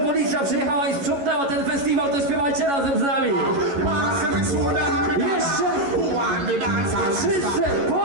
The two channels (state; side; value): late; left; 11 ms